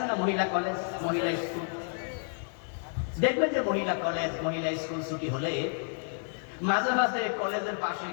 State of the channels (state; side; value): silent; right; 58 dB below the other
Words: না মহিলা কলেজ, মহিলা স্কুল? দেখবেন যে মহিলা কলেজ, মহিলা স্কুল ছুটি হলে মাঝে মাঝে কলেজের পাশে